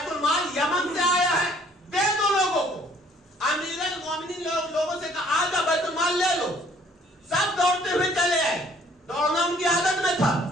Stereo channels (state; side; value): normal; both; correlation 0.59